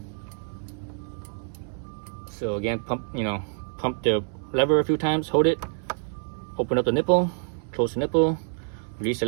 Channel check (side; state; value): left; silent; 60 dB below the other